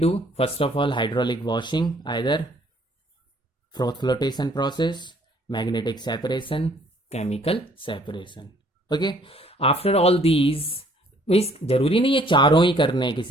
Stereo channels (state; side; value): normal; both; correlation 0.61